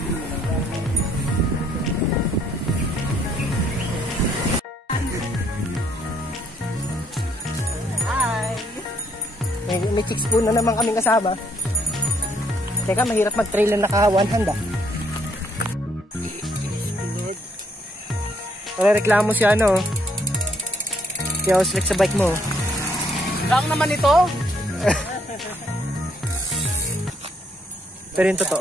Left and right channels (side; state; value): both; normal; correlation 0.69